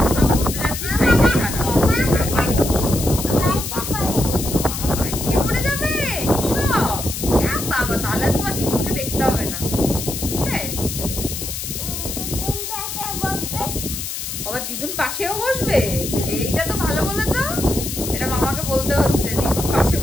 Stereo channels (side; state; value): left; noise; hiss, 6 dB below the sound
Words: ঘুরতে যাচ্ছি ভাইকে ছাড়া। মামা বাইকে পড়ে যাবে এসব? বাবা, তাহলে তোমার দিদুনকে দেখতে হবে না, বুঝলে? আবার দিদুন পাশেও বসবে, এইটা তো ভালো বলেছ। এটা মামাকে বলতে হচ্ছে, দিদুন পাশে